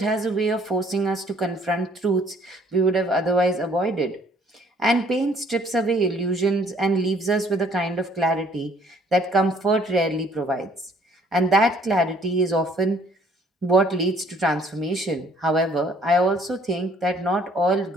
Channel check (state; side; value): normal; both; correlation 0.60